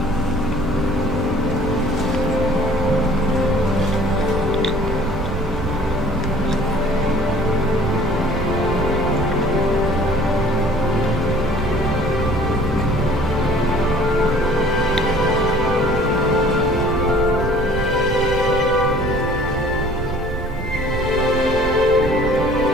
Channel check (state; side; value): noise; right; rumble, 6 dB below the sound